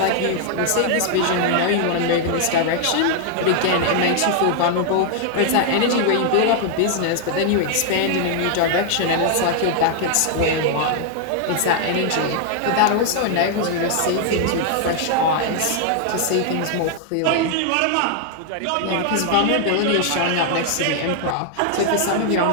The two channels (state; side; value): different; both; correlation 0.00